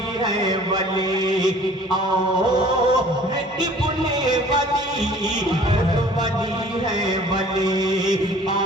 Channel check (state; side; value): normal; both; correlation 0.50